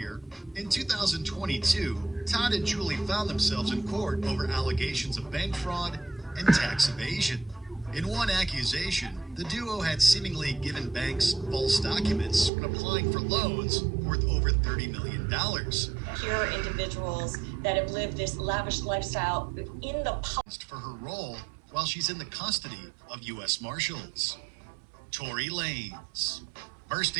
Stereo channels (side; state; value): left; drops out; at 12.5 s